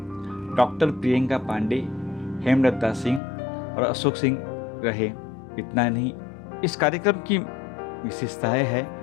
डॉक्टर प्रियंका पांडे, हेमलता सिंह और अशोक सिंह रहे। इतना नहीं, इस कार्यक्रम की विशेषता है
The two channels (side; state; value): right; drops out; at 3.2 s